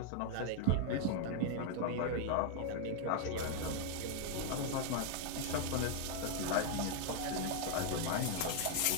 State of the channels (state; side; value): different; both; correlation 0.00